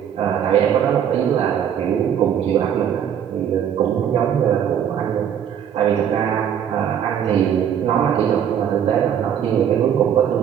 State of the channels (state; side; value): quieter; left; 9.0 dB